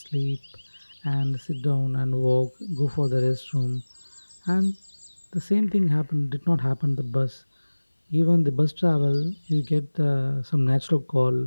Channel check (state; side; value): inverted; both; correlation -1.00